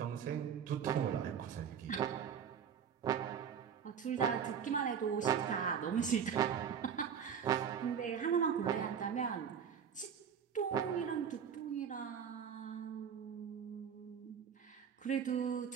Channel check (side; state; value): left; quieter; 7.7 dB